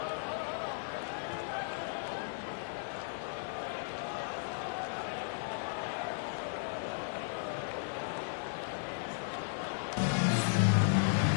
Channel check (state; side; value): silent; right; digital silence